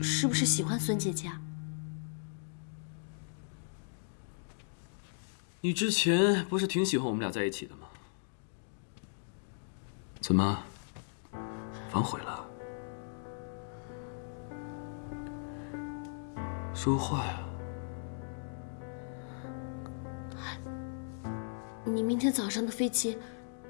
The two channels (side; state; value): right; silent; digital silence